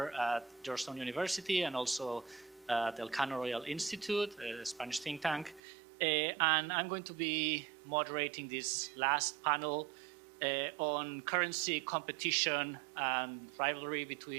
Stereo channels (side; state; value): left; drops out; at 5.6 s